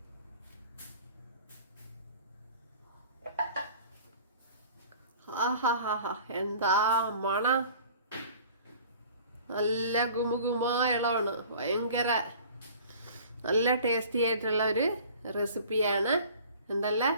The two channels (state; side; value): inverted; both; correlation -0.47